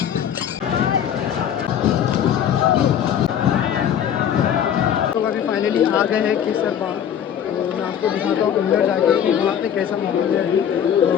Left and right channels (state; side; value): quieter; right; 9.2 dB